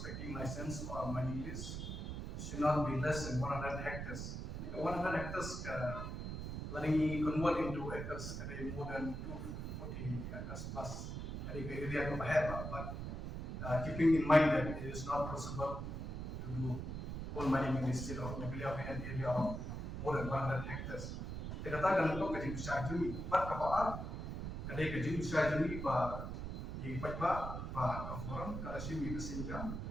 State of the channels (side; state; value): right; noise; rumble, 5 dB below the sound